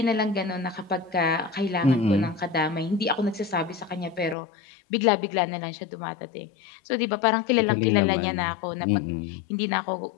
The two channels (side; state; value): right; drops out; at 4.4 s